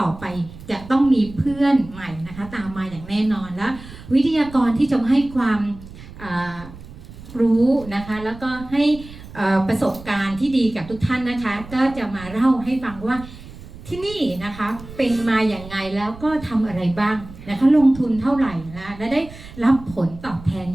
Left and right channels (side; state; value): right; noise; rumble, 16 dB below the sound